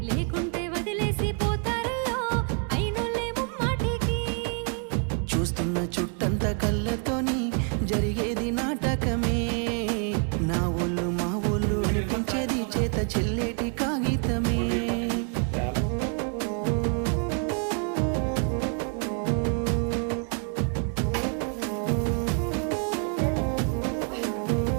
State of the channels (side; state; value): left; quieter; 39.8 dB